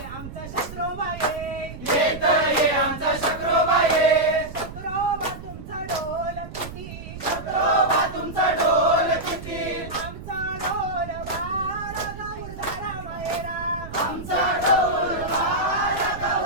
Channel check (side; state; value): right; noise; rumble, 12 dB below the sound